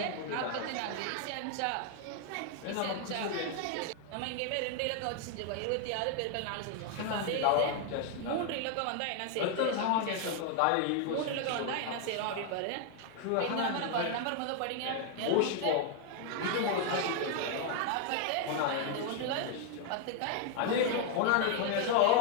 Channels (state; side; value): different; both; correlation 0.00